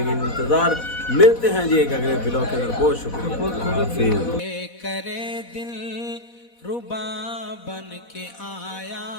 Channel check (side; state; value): right; late; 4.1 ms